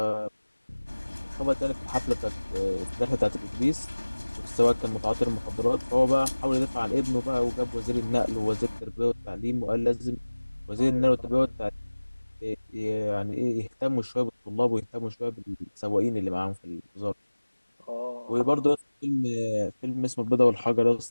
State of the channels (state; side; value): inverted; both; correlation -1.00